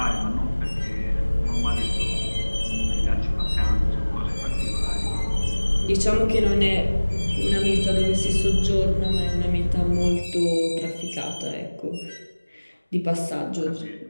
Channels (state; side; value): inverted; both; correlation -1.00